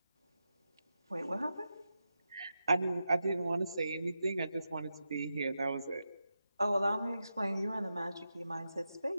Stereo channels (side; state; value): both; inverted; correlation -0.89